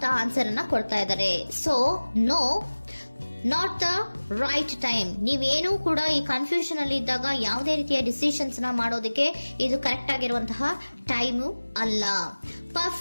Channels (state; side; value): inverted; both; correlation -1.00